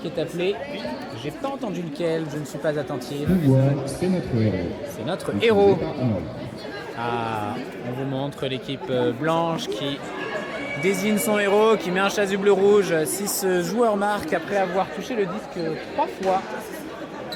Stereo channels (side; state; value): both; identical; correlation 1.00